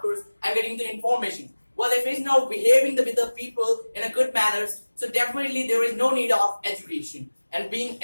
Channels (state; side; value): inverted; both; correlation -1.00